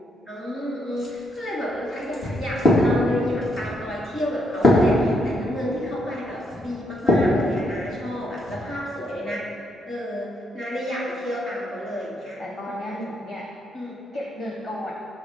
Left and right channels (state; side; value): normal; both; correlation 0.76